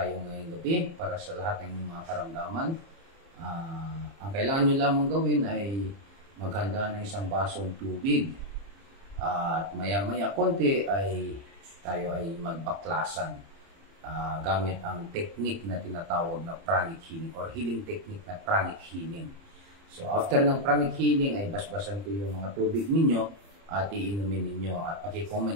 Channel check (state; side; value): late; left; 30 ms